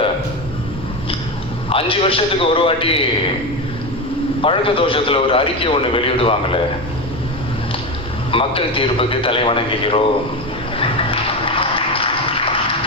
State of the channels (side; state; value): both; normal; correlation 0.17